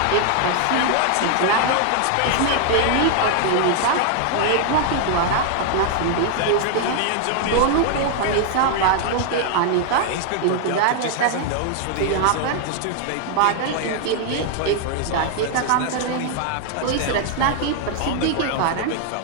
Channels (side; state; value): both; different; correlation 0.00